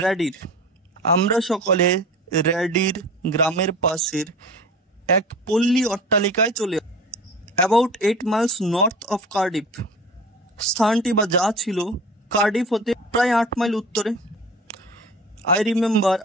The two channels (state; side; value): normal; both; correlation 0.37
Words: Radir, আমরা সকলে র্যাডির গ্রামের পাশের এক পল্লী অট্টালিকায় চলে about 8 miles north of Cardiff, স্থানটি বা যা ছিল কার্ডিফ হতে প্রায় 8 মাইল উত্তরে। আই রিমেম্বার,